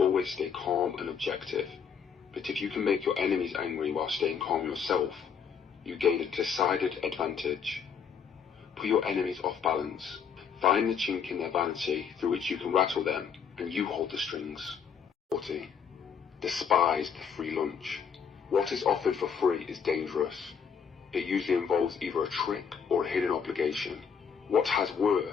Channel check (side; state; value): right; quieter; 6.8 dB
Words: stay calm and objective. But if you can make your enemies angry while staying calm yourself, you gain a decided advantage. Put your enemies off balance. Find the chink in their vanity through which you can rattle them, and you hold the strings. 40. Despise the free lunch. What is offered for free is dangerous. It usually involves either a trick or a hidden obligation. What has